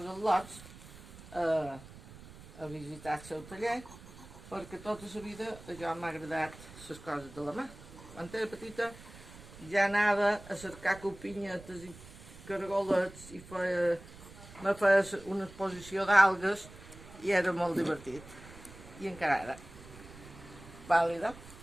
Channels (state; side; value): noise; right; rumble, 18 dB below the sound